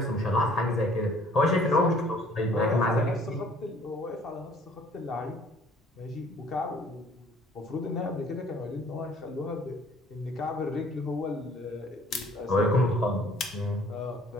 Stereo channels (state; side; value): normal; both; correlation 0.56